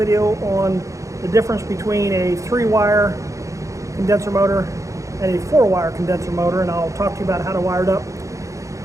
on the difference between a 3-wire condenser motor and a 4-wire condenser motor, and I'll talk to you about how to wire it up,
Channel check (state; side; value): late; left; 0.15 ms